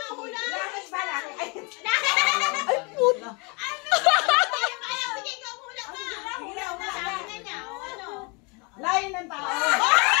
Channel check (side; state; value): right; quieter; 30.9 dB